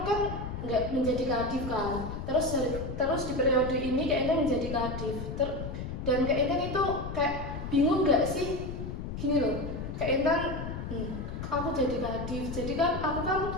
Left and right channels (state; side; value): noise; left; rumble, 6 dB below the sound